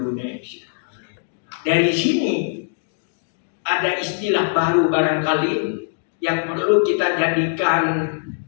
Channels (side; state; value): right; silent; digital silence